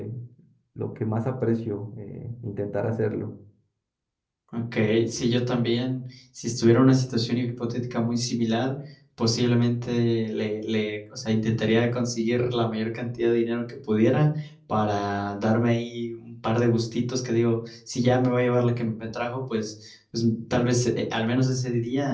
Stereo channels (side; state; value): both; identical; correlation 1.00